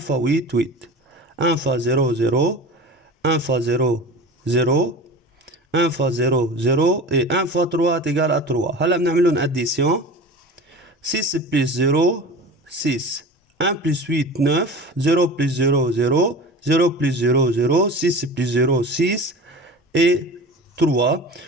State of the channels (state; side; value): normal; both; correlation 0.34